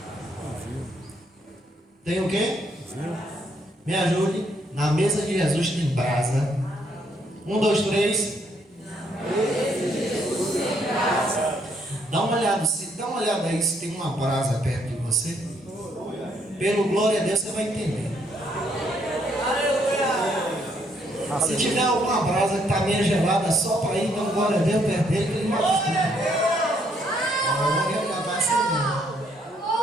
Tem o quê? Me ajude. Na mesa de Jesus tem brasa. 1, 2, 3. Na mesa de Jesus tem brasa. Dá uma olhada aí se tem uma brasa perto de você. Pelo glória a Deus você vai entender. Se tiver alguma brasa que está meio gelada, só para ir, então glória a Deus perto dele, que ele vai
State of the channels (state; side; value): normal; both; correlation 0.70